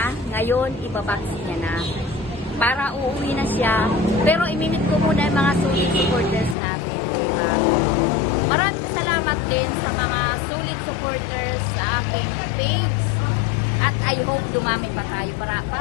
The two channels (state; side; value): drops out; right; at 6.6 s